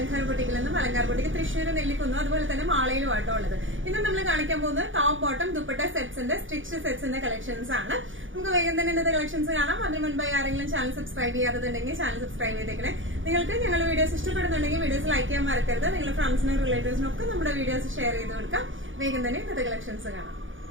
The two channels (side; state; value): left; late; 0.57 ms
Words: ബൊട്ടിക്കിൽ നിന്നും അലങ്കാർ ബൊട്ടിക്ക് തൃശ്ശൂർ നെല്ലിക്കുന്നു, അതുപോലെ തന്നെ മാളയിലും ആട്ടോ ഉള്ളത്. ഇന്ന് നമ്മൾ കാണിക്കാൻ പോകുന്നത് ടോപ്പ് ബോട്ടം ദുപ്പട്ട സെറ്റ്സിന്റെ സ്റ്റിച്ച് സെറ്റ്സിന്റെ കളക്ഷൻസ് ആണ്. നമുക്ക് വേഗം തന്നെ ഇന്നത്തെ കളക്ഷൻസ് കാണാം. അതിന് മുൻപായി ആരെങ്കിലും ചാനൽ സബ്സ്ക്രൈബ് ചെയ്യാത്തതുണ്ടെങ്കിൽ ചാനൽ സബ്സ്ക്രൈബ് ചെയ്തേക്കണേ. നിങ്ങൾക്ക് ഞങ്ങളുടെ വീഡിയോസ് ഇഷ്ടപ്പെടുന്നുണ്ടെങ്കിൽ വീഡിയോസ് ലൈക്ക് ചെയ്യാൻ മറക്കരുത്. നിങ്ങളുടെ ഫ്രണ്ട്സിനും റിലേറ്റീവ്സിനും ഒക്കെ നമ്മുടെ വീഡിയോസ് ഷെയർ ചെയ്ത് കൊടുക്കാം. വേഗം തന്നെ ഇന്നത്തെ കളക്ഷൻസ് കാണാം.